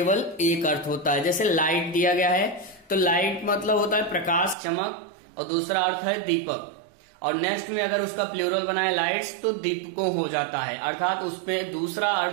एक अर्थ होता है। जैसे लाइट दिया गया है, तो लाइट मतलब होता है प्रकाश, चमक, और दूसरा अर्थ है दीपक। और नेक्स्ट में अगर उसका प्लूरल बनाए लाइट्स तो दीपकों हो जाता है, अर्थात उसमें दूसरा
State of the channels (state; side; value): drops out; left; at 4.5 s